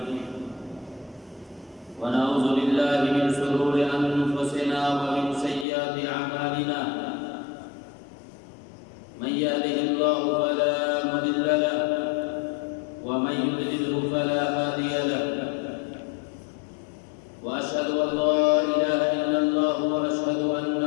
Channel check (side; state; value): right; drops out; at 5.7 s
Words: ونعوذ بالله من شرور أنفسنا ومن سيئات أعمالنا من يهده الله فلا مضل له ومن يضلل فلا هادي له وأشهد أن لا إله إلا الله وأشهد أن